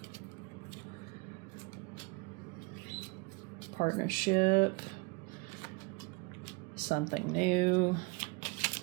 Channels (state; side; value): quieter; left; 27.6 dB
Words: Partnership. Something new.